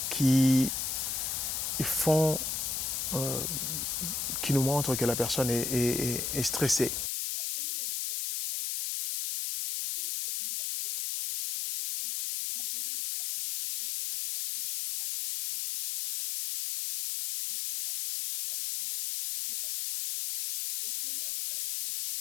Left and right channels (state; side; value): noise; left; hiss, 2 dB below the sound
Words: qui nous montrent que la personne est stressée. Alors, selon le docteur Herbert Benson de l'université Harvard, il dit ceci, environ 80% des consultations médicales seraient liées au stress d'une manière indirecte ou directe. Et selon